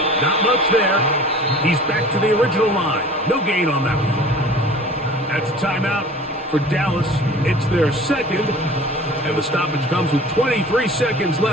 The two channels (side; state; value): both; normal; correlation 0.43